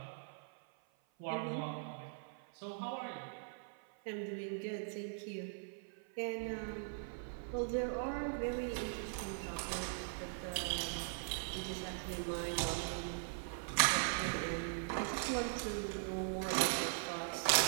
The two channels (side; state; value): left; silent; 51 dB below the other